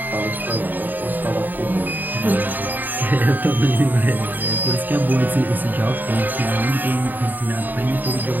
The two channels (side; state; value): left; late; 0.088 ms